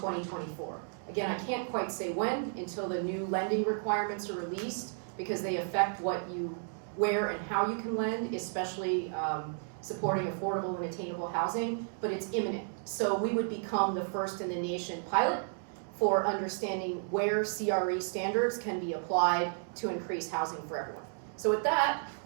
Again, I can't quite say when until the new lending requirements are released, because they affect where and how you can lend, especially supporting affordable and attainable housing, but it's imminent. So we would become the first in the nation pilot for understanding where CRE standards can be applied to increase housing for everyone. So with that,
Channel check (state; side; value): silent; left; digital silence